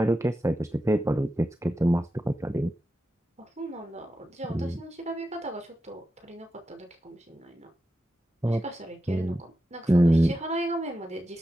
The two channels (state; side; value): normal; both; correlation 0.90